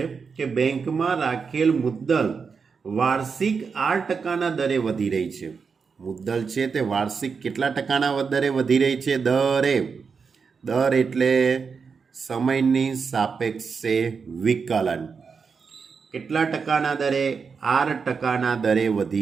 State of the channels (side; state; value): left; quieter; 5.5 dB